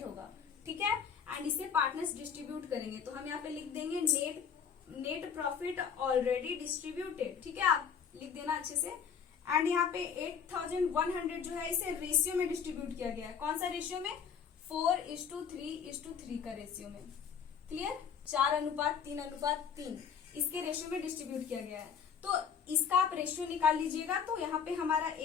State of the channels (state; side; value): quieter; right; 7.1 dB